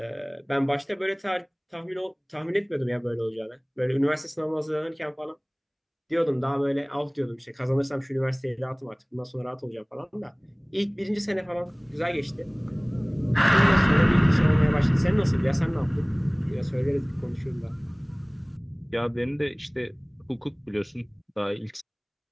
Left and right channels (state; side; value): identical; both; correlation 1.00